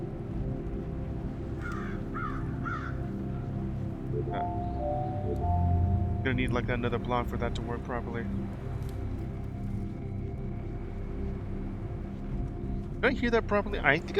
Gonna need like another block for that to work properly. Did I hear that properly? I think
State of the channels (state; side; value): identical; both; correlation 1.00